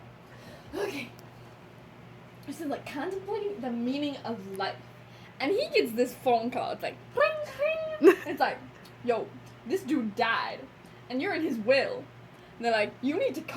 Okay. This is like contemplating the meaning of life. And he gets this phone call. It's like, ring, ring. It's like, yo, this dude died. And you're in his will. And they're like, you need to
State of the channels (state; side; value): identical; both; correlation 1.00